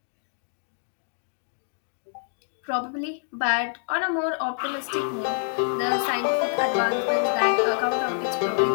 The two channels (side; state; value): right; silent; digital silence